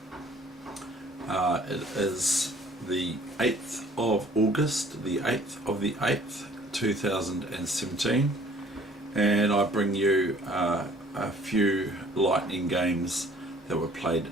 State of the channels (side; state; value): both; normal; correlation 0.55